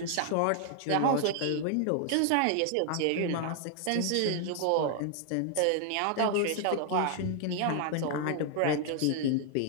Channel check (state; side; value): different; both; correlation 0.00